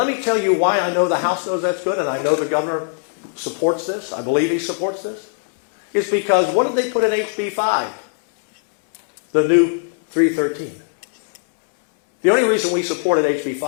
me tell you why I know the House knows that's good, and I know the governor supports this. I believe he supports this. It's because what did they put in HB 5? The new 313. The only reason we supported HB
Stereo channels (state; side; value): silent; right; 66 dB below the other